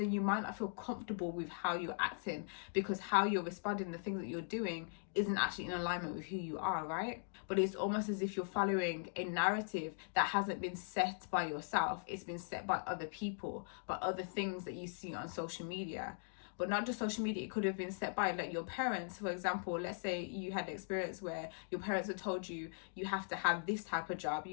you might not feel comfortable with how you're acting, because how you're responding, the things that you're doing isn't actually in alignment with who you are, right? But it's almost as if you're following a narrative that hasn't been set by yourself. It's been set by other people, by other things that you see on social media. But not just social media, it could have been set by like your parents. For example, let's say you had an experience where your parents had told you, you have to have this type of job,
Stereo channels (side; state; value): right; silent; digital silence